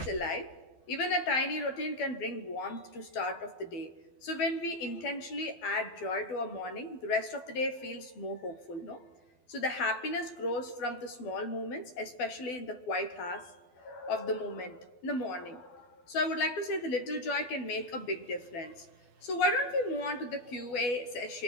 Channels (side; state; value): right; late; 12 ms